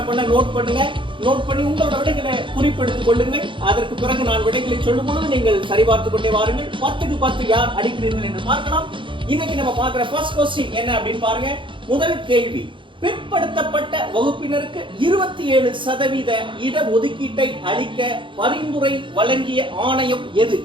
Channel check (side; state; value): left; late; 0.24 ms